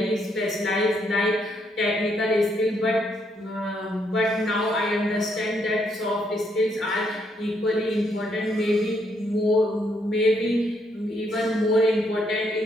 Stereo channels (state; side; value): normal; both; correlation 0.74